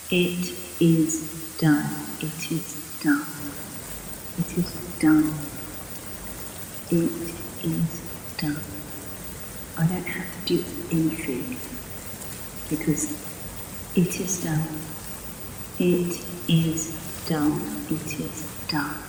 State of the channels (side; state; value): both; identical; correlation 1.00